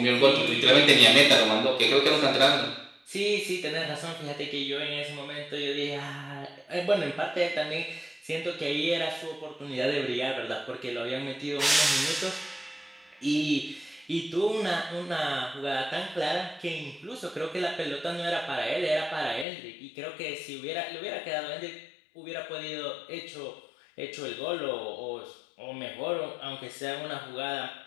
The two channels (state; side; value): drops out; right; at 19.5 s